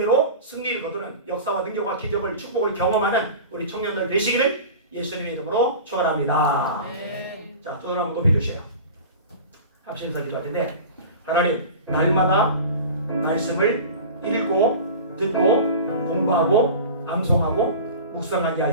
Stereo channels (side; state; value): both; inverted; correlation -0.35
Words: 승리를 거두는 역사와 능력과 기적을 축복을 경험하는 우리 청년들 되시기를 예수님의 이름으로 축원합니다. 자, 두 손 한번 높여주세요. 합심서 기도할 텐데 하나님 날마다 말씀을 읽고 듣고 공부하고 암송하고 묵상하게